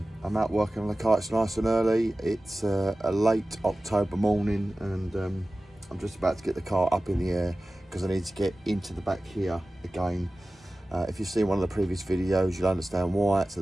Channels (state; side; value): normal; both; correlation 0.96